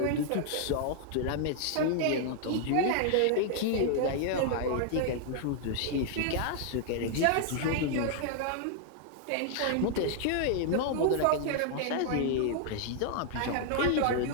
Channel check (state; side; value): different; both; correlation 0.00